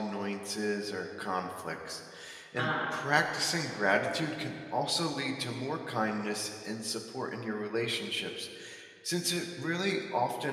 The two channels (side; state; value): both; identical; correlation 1.00